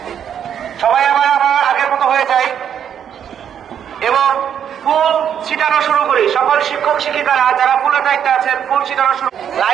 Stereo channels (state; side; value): quieter; left; 8.8 dB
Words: সবাই আবার আগের মতো হয়ে যায় এবং ফুল ছিটানো শুরু করি। সকল শিক্ষক শিক্ষিকারা যারা ফুলের দায়িত্বে আছেন ফুল ছিটানো শুরু।